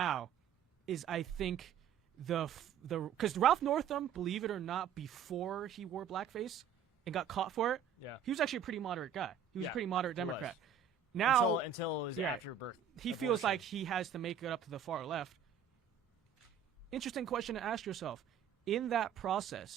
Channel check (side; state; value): left; quieter; 7.7 dB